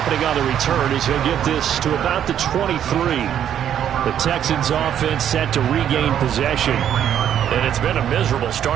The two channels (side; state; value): left; quieter; 9.9 dB